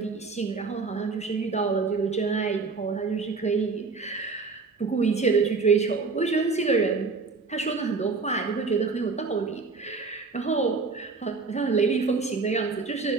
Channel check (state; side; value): quieter; left; 4.4 dB